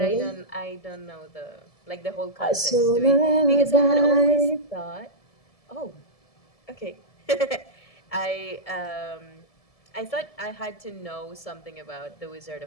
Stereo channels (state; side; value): late; right; 1.7 ms